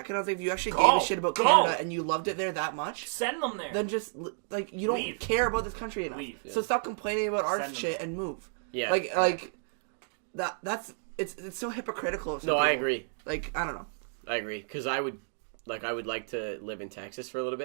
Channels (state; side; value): silent; left; digital silence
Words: I was like, if you actually Go! gave a shit about Go! Canada and you loved it there that much, Send them there. then just like you don't Leave. care about this country enough. Leave. So stop complaining about our Send them shit there. and move. Yeah. Like that's it's so hypocritical. Of some No, I people. agree. Like I don't know. I agree because I would like to live in Texas for a little